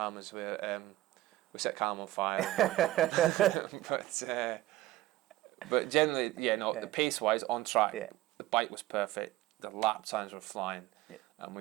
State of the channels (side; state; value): left; quieter; 16.3 dB